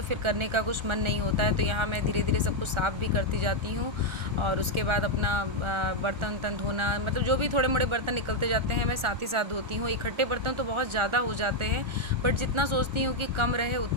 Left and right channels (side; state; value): left; late; 1.4 ms